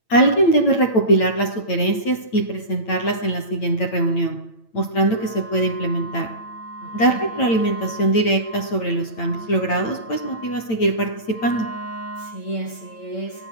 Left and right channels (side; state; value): right; late; 8.9 ms